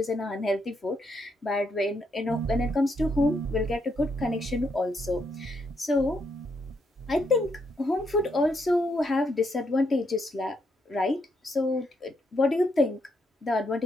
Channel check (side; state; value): both; normal; correlation 0.77